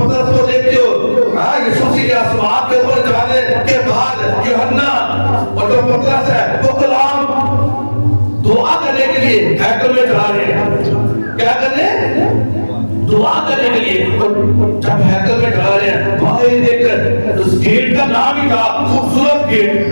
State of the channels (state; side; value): inverted; both; correlation -1.00